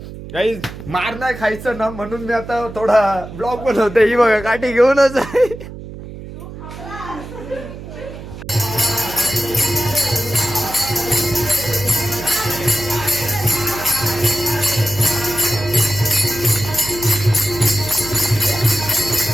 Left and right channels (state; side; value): noise; right; hum, 12 dB below the sound